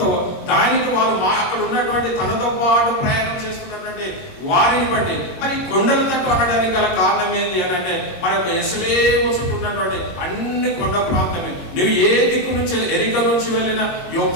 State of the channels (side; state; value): right; late; 22 ms